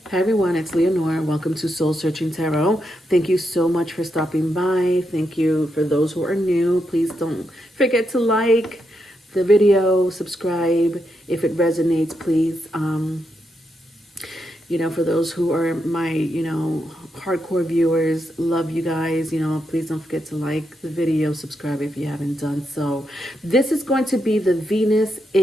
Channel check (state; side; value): normal; both; correlation 0.83